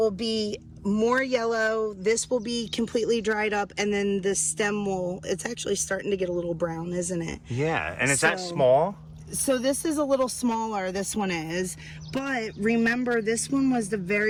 be more yellow, this will be completely dried up, and then the stem it's actually starting to get a little brown, isn't it? Yeah. And is that small? So this is a little smaller, this one is, but remember, this one was the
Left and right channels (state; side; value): identical; both; correlation 1.00